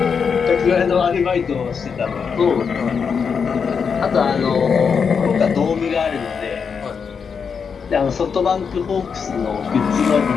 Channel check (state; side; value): quieter; right; 6.2 dB